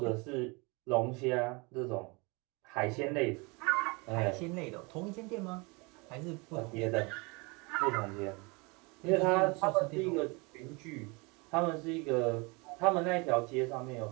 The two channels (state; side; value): quieter; left; 28.3 dB